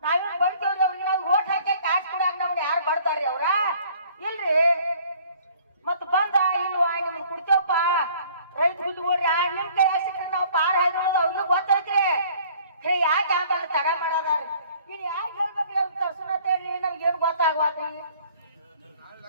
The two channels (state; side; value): inverted; both; correlation -0.55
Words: ನಾವೇನ್ ಬಡ್ತೇವ್ರಿ ಅವ್ರಿಗೆ. ನಾವು ಓಟ್ ಹಾಕಿ ಕಾಸು ಕೊಡಾಕ ನಮ್ನ ಯಾರು ಬಡ್ತಾರ್ರಿ ಅವ್ರ? ಇಲ್ರಿ. ಮತ್ ಬಂದ ಇಲ್ವಾ ನಿಮ್ಗೆ ಕುಡ್ತೇವಪ್ಪ ರೈತ ಬಿಟ್ಕೊಡ್ರಿ. ನಿಮ್ ಕೈ ಸಿಕ್ಕ್ರಿ ನಾವು ಪಾರ ಹಾಯ್ದೋಳದ ಅವ್ರಿಗೆ ಗೊತ್ತೈತ್ರಿ. ಯಾಕೆ ಆಂಬಲ್ಲ ತಡ ಮಾಡೋದಾರಿ? ಇನ್ ಯಾಕೆ ಹೇಳ್ಬೇಕ್ರಿ? ಅವ್ರು ತರ್ಸೋಣ ಹೇಳ್ರಿ. ನಮ್ಗೆ ಏನು ಗೊತ್ತಾಗ್ವಾತ್ರಿ?